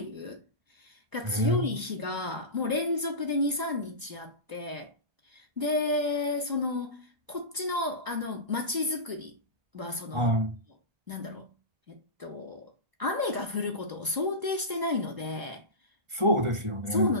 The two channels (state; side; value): late; left; 1.0 ms